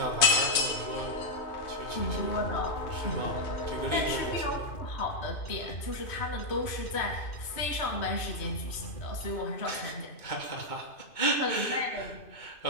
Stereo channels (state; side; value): late; right; 2.5 ms